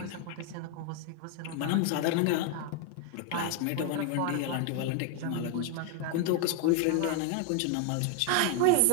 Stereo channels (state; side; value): different; both; correlation 0.01